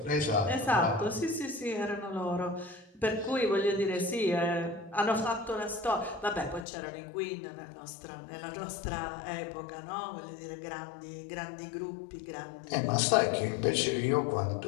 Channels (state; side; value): drops out; right; at 6.7 s